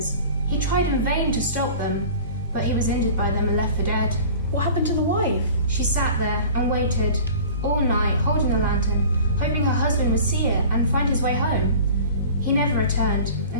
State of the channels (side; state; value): both; inverted; correlation -0.42